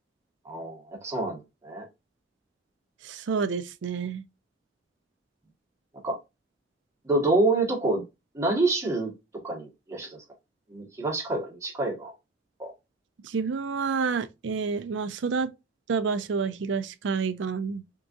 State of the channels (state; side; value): quieter; left; 3.2 dB